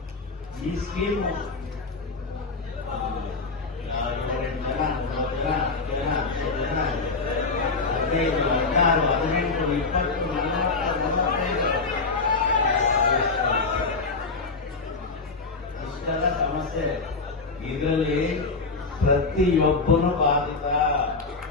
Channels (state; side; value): quieter; right; 4.0 dB